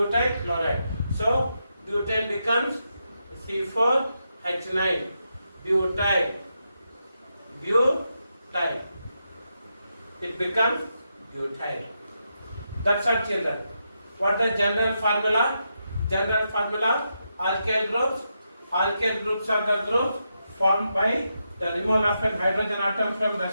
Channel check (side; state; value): both; inverted; correlation -0.84